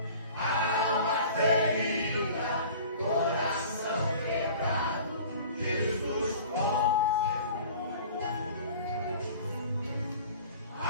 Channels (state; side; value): inverted; both; correlation -0.44